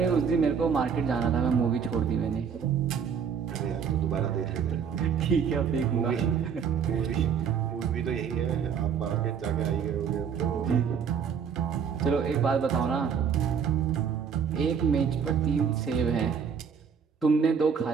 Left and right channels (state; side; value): quieter; left; 7.0 dB